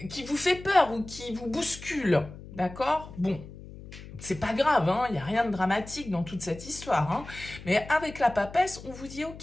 vous fait peur ou qui vous bouscule. D'accord? Bon. C'est pas grave, il n'y a rien de dramatique dans toute cette histoire. Mais avec la papesse, on vous dit,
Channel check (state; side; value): noise; left; hum, 15 dB below the sound